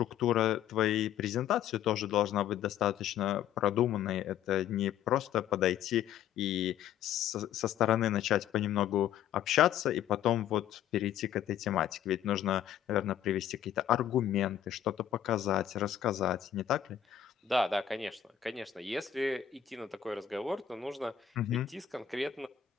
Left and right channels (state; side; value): quieter; right; 10.1 dB